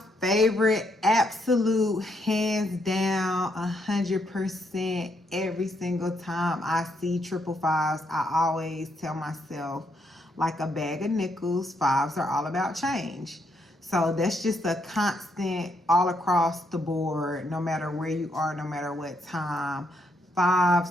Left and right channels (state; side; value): normal; both; correlation 0.76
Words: favorite, absolute, hands down, 100%, every single time I see 555s, I always tell myself, like a bag of nickels, fives are all about change. So that's just a constant all across the board, no matter where you are, no matter what time. Fives